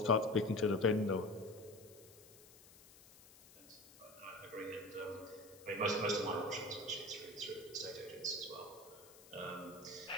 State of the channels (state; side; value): noise; left; hiss, 21 dB below the sound